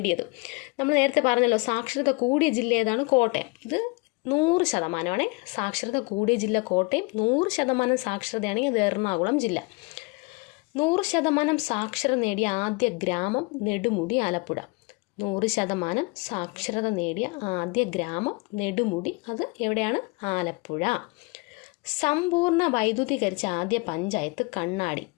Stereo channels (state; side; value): quieter; right; 28.2 dB